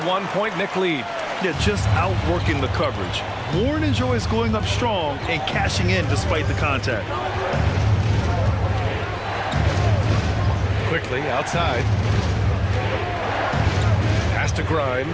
1-point Knick lead. Yeah, just outworking the coverage. Warren enjoys going up strong and cashing in despite the contact. Quickly outside. Pass to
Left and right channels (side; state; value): both; identical; correlation 1.00